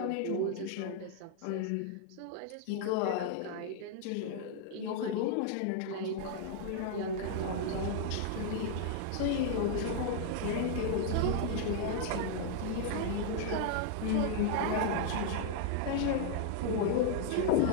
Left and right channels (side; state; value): both; different; correlation 0.00